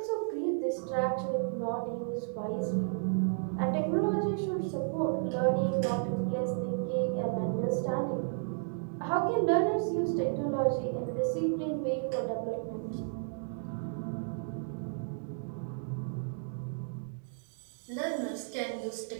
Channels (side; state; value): left; silent; digital silence